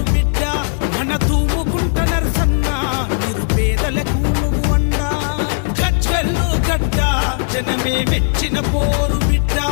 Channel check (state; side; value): silent; right; digital silence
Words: బిడ్డ మన తూముకుంట నరసన్న నిరుపేదలకు నువ్వు అండా. గజ్వెల్లు గడ్డ జనమే మెచ్చిన పోరు బిడ్డ